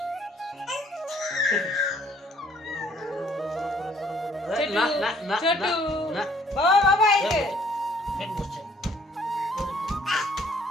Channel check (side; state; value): both; normal; correlation 0.61